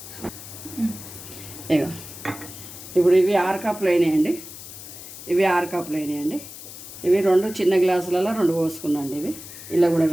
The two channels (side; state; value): left; noise; hiss, 14 dB below the sound